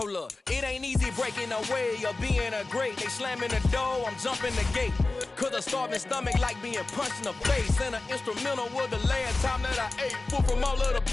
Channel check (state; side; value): quieter; right; 3.3 dB